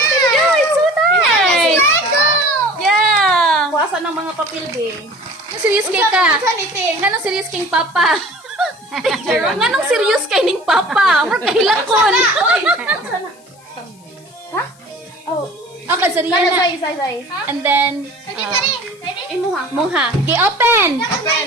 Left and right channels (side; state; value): left; noise; hiss, 28 dB below the sound